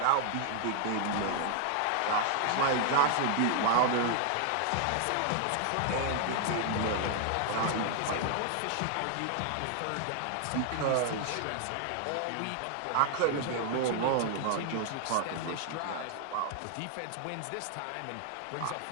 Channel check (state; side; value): different; both; correlation 0.00